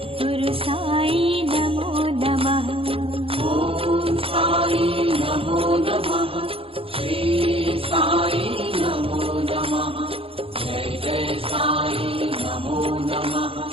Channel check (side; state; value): left; late; 0.27 ms